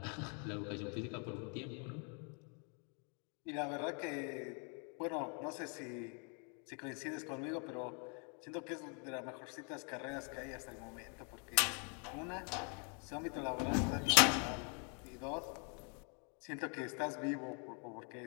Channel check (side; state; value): right; quieter; 38.1 dB